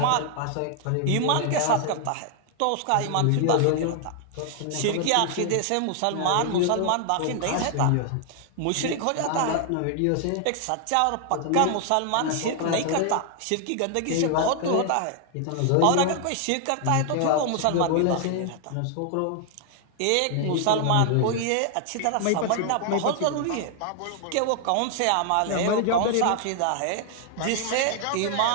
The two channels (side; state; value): both; different; correlation 0.00